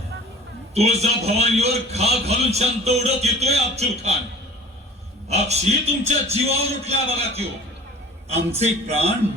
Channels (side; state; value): both; normal; correlation 0.45